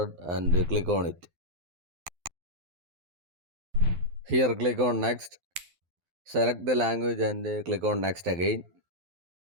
and click on it. Here click on next, select the language and click on next again.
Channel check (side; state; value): left; late; 12 ms